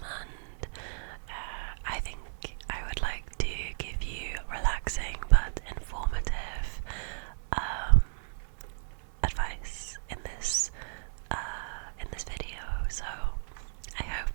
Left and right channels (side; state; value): left; silent; 56 dB below the other